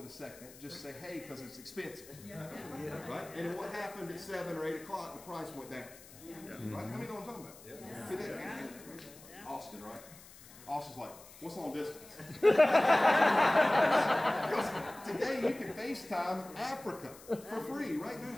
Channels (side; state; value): left; noise; hiss, 20 dB below the sound